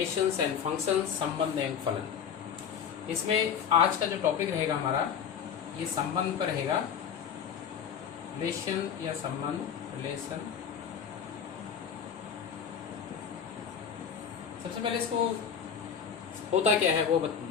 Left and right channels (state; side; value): quieter; right; 7.7 dB